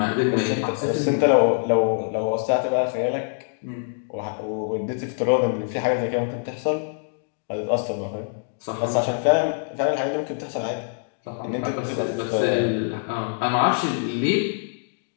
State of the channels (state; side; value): silent; right; digital silence